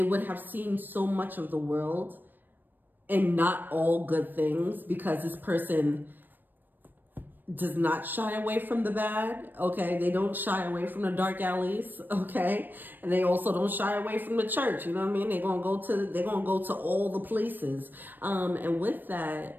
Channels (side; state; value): left; late; 0.092 ms